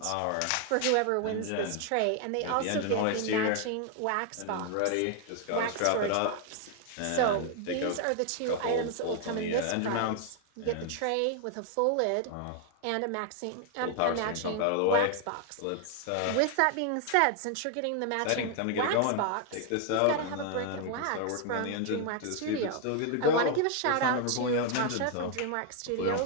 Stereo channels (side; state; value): both; different; correlation 0.00